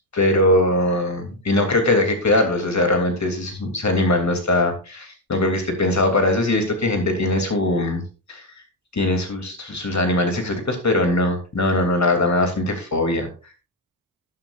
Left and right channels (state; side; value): normal; both; correlation 0.04